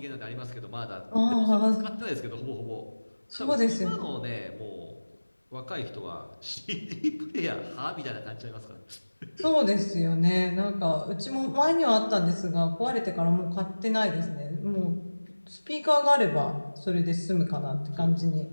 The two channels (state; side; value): inverted; both; correlation -1.00